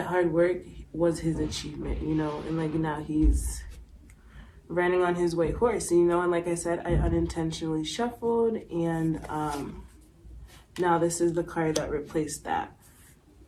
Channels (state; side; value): identical; both; correlation 1.00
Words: hard work was his achievement, you know. And now he's riding on his white horse, you know. And like I said, I unintentionally shuffled. And now this is the card that replaced that.